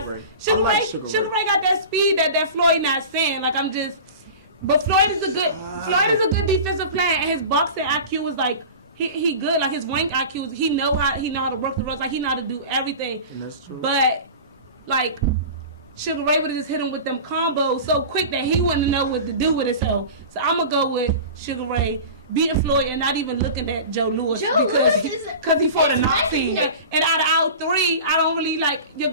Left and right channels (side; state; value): both; inverted; correlation -0.34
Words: Sugar Ray got that speed that Floyd not seeing. Like but Floyd is a good defensive player, and his boxing IQ was like he good. Like his ring IQ he know how to work the ropes. Like he know how to do everything. And that's true. But like Sugar Ray would have just hit him with them combos so quick that he wouldn't know what to do with himself. So I'm gonna go with Sugar Ray beating Floyd and not even looking at Joe Louis because he fought a Nazi. And out of our 3, I don't really like your